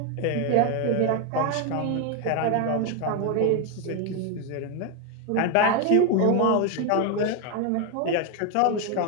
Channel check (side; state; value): both; different; correlation 0.01